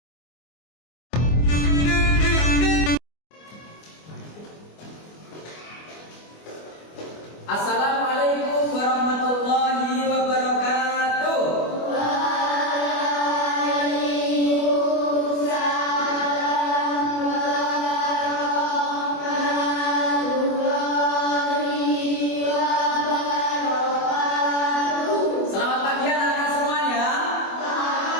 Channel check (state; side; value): late; right; 24 ms